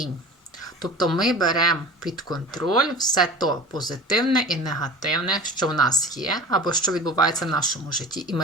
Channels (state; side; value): normal; both; correlation 0.37